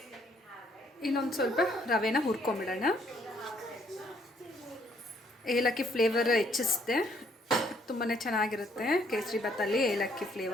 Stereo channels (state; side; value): normal; both; correlation 0.68